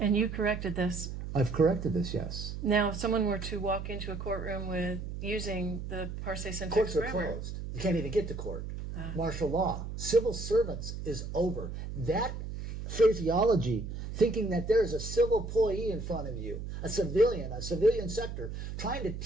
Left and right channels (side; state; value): right; noise; hum, 7 dB below the sound